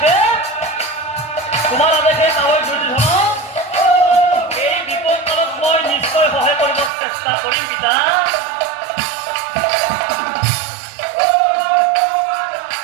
তোমার আদেশে তাহলে দুর্যোধন এই বিপদ কালত মই নিশ্চয় সহায় কৰিব চেষ্টা কৰিম পিতা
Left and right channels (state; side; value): drops out; left; at 6.9 s